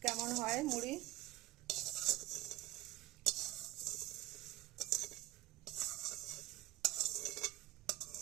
কেমন হয় মুড়ি।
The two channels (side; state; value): left; quieter; 17.3 dB